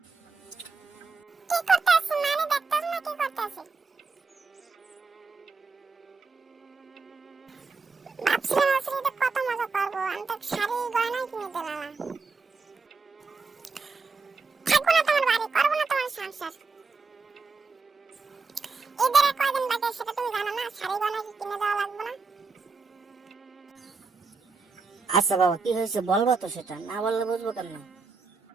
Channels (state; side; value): quieter; left; 4.4 dB